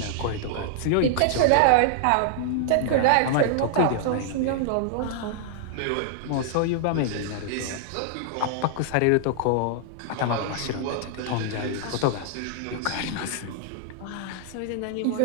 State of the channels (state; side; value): different; both; correlation -0.01